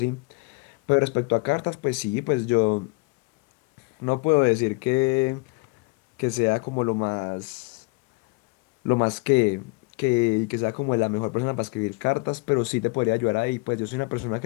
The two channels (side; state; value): right; quieter; 28.0 dB